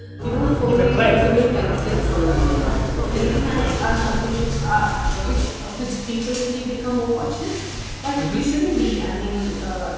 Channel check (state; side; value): identical; both; correlation 1.00